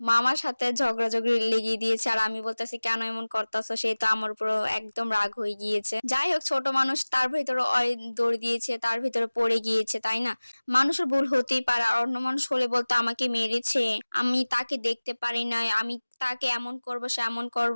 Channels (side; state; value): both; inverted; correlation -1.00